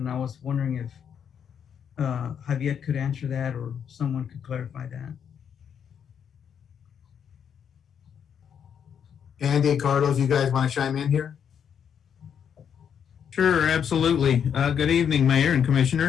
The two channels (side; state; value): right; quieter; 8.0 dB